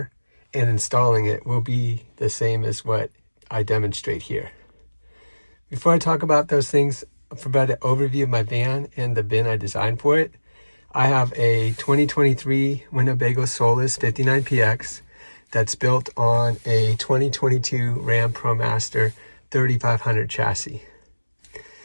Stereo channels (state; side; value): inverted; both; correlation -1.00